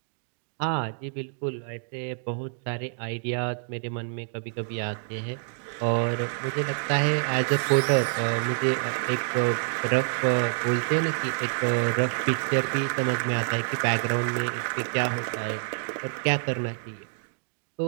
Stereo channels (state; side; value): silent; left; digital silence